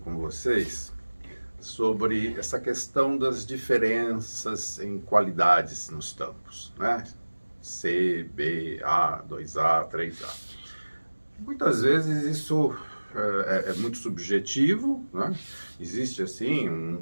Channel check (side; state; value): both; inverted; correlation -1.00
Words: vocês sobre essa questão das diferenças em qualidades nos tampos, né? C, B, A, 2A, 3A. Muitas vezes isso é muito subjetivo, né? Existe assim